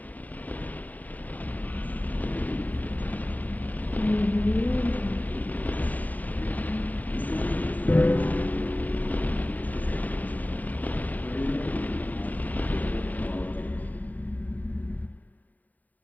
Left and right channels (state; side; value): late; right; 0.080 ms